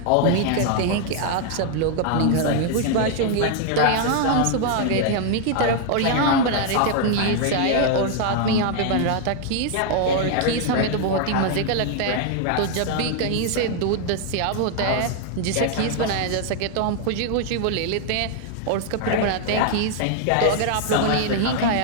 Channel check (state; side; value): different; both; correlation 0.00